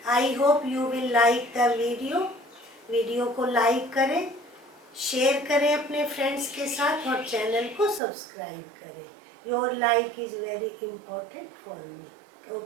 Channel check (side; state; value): left; drops out; at 8.0 s